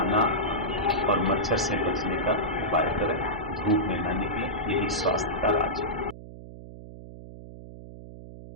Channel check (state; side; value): noise; right; hum, 14 dB below the sound